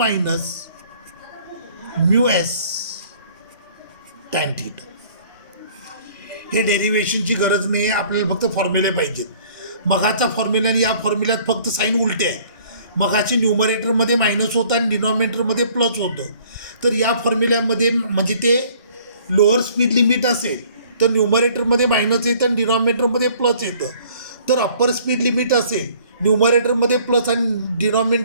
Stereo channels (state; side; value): inverted; both; correlation -0.56